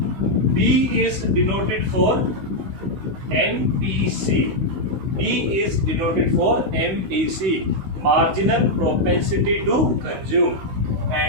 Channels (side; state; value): left; late; 16 ms